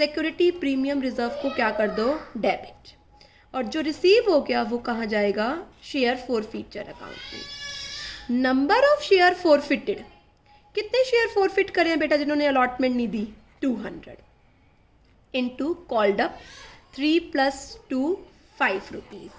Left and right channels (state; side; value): identical; both; correlation 1.00